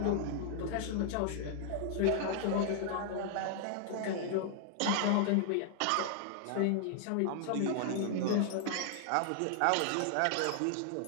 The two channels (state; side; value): different; both; correlation 0.00